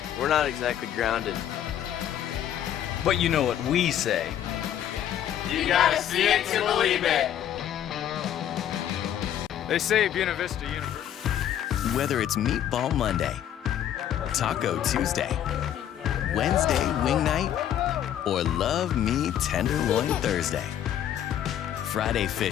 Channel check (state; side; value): quieter; right; 10.6 dB